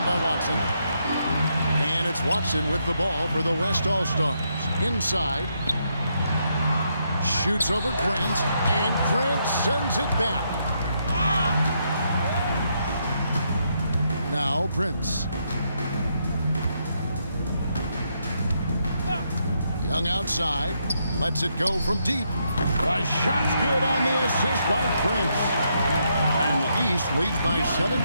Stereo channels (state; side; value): inverted; both; correlation -0.78